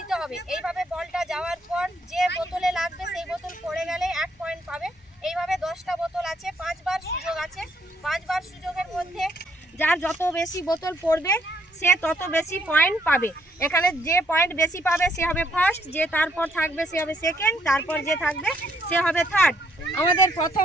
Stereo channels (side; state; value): both; normal; correlation 0.70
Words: হবে এইভাবে বলটা যাওয়ার পর যে বোতলে লাগবে সেই বোতল পড়ে গেলে 1 পয়েন্ট পাবে এইভাবে 10টা বোতল আছে 5 বার সুযোগ আছে 5 বার সুযোগের মধ্যে যার যত বেশি বোতল পড়বে সে তত বেশি পয়েন্ট পাবে এখানে যে পয়েন্ট বেশি পাবে সে হবে ফার্স্ট যে তারপর থাকবে সে হবে সেকেন্ড তারপর যে থাকবে সে হবে থার্ড আমাদের